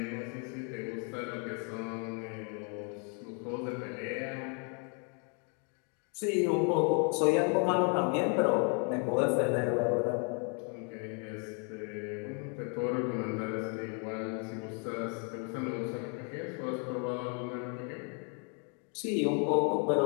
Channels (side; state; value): right; quieter; 38.8 dB